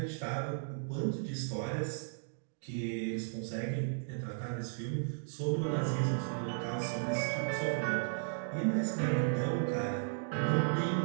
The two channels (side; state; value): left; silent; digital silence